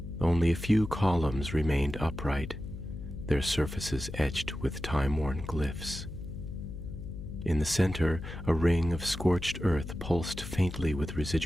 Only a few columns remained upright, their surfaces etched with time-worn glyphs. In the center, a ring of scorched earth pulsed faintly with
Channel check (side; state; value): left; noise; hum, 9 dB below the sound